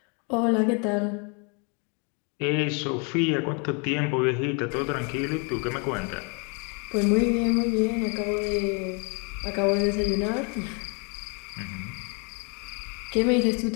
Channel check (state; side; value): quieter; right; 34.7 dB